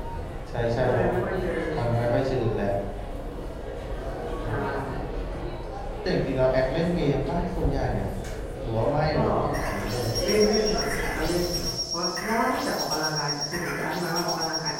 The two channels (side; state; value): both; identical; correlation 1.00